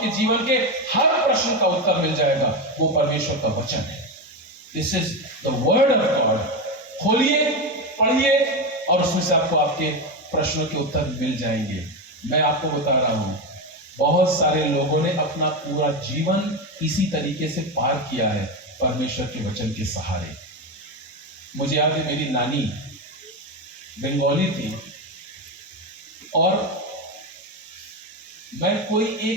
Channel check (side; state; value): both; normal; correlation 0.14